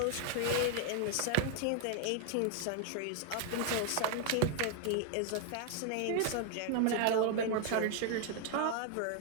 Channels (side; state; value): both; different; correlation 0.00